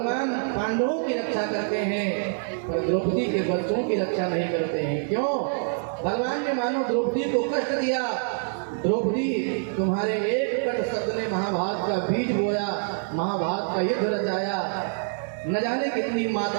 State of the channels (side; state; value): left; silent; 61 dB below the other